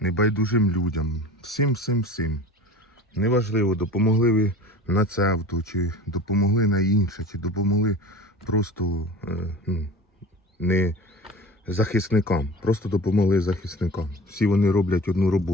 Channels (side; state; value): both; normal; correlation 0.37